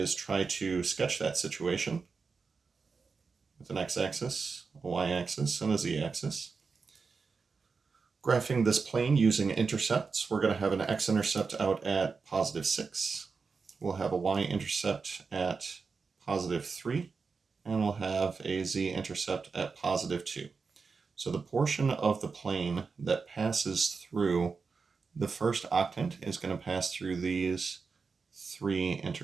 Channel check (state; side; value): quieter; left; 4.9 dB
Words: try to sketch that situation with an x-axis, a y-axis, and a z-axis. Graphing this plane using intercepts, we're going to have an x-intercept out at positive 6. We'll have a y-intercept at positive 3, and we'll have a z-intercept at positive 2. So the portion of the plane that passes through the first octant is going to pass through these three